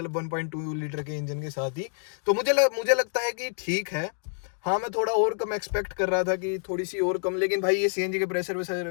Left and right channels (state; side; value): silent; right; 60 dB below the other